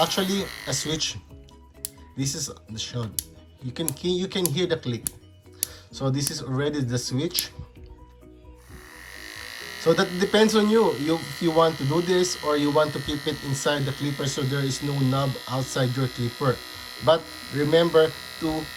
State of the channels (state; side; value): identical; both; correlation 1.00